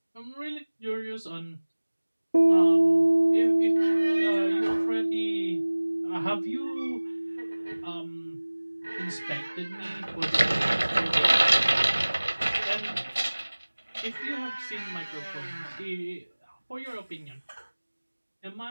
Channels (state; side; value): inverted; both; correlation -1.00